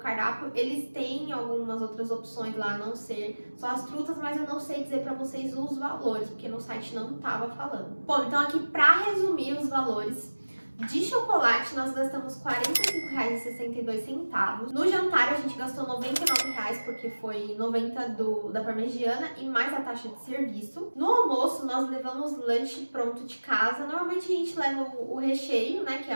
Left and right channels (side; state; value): both; inverted; correlation -1.00